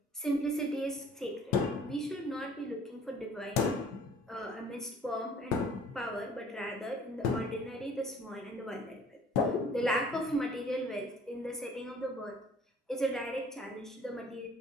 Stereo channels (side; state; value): both; normal; correlation 0.52